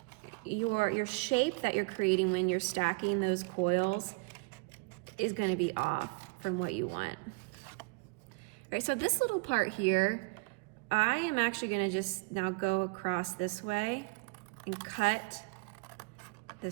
your shape that you're creating when you're stacking those coils is going to be off from what you want. All right, so this little part here, I am actually going to just now go across this way and cut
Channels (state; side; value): quieter; left; 29.5 dB